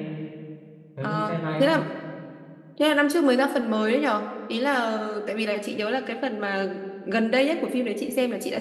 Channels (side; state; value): both; identical; correlation 1.00